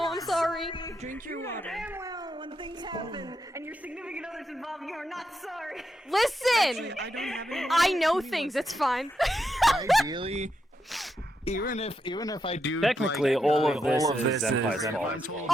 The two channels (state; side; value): normal; both; correlation 0.83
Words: have. I'm sorry. Drink your water. Damn well, when things happen and your significant other's involved, you are not sorry. Listen! I don't have any. I know things, it's fine. Ideally, even if I do Technically, like, all of this is Senpai's fault.